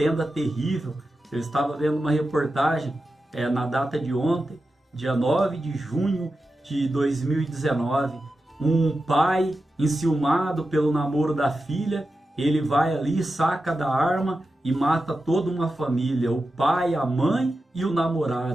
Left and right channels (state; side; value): normal; both; correlation 0.91